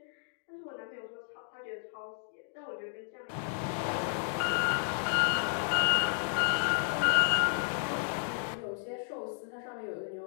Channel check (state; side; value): silent; right; digital silence